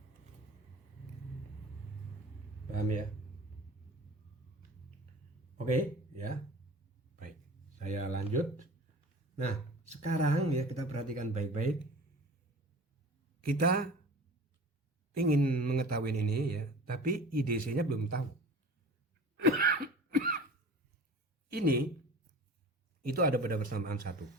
Paham ya? Oke, ya. Baik. Saya lanjut. Nah, sekarang ya kita perhatikan baik-baik. Kita ingin mengetahui ini ya, tapi IDC-nya belum tahu. Ini itu ada pada persamaan satu.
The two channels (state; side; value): normal; both; correlation 0.39